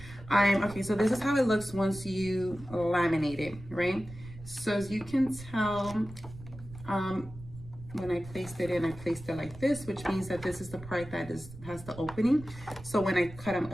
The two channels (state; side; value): noise; right; rumble, 16 dB below the sound